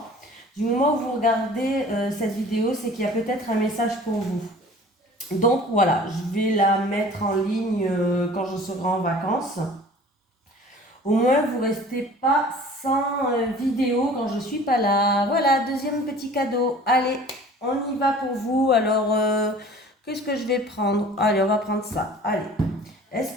du moment où vous regardez cette vidéo, c'est qu'il y a peut-être un message pour vous. Donc voilà, je vais la mettre en ligne quand je serai en vacances. Au moins, vous ne restez pas sans vidéo quand je ne suis pas là. Voilà, deuxième petit cadeau. Allez, on y va pour vous. Alors, qu'est-ce que je vais prendre? Allez, on va prendre ça. Allez.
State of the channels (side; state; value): both; normal; correlation 0.46